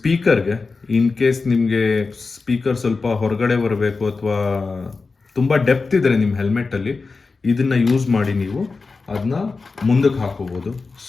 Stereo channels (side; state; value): right; quieter; 4.2 dB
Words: ಇನ್ ಕೇಸ್ ನಿಮಗೆ ಸ್ಪೀಕರ್ ಸ್ವಲ್ಪ ಹೊರಗಡೆ ಬರಬೇಕು ಅಥವಾ ತುಂಬ ಡೆಪ್ತ್ ಇದ್ದರೆ ನಿಮ್ಮ ಹೆಲ್ಮೆಟ್ಟಲ್ಲಿ, ಇದನ್ನು ಯೂಸ್ ಮಾಡಿ ನೀವು ಅದನ್ನ ಮುಂದಕ್ಕೆ ಹಾಕೋಬೋದು.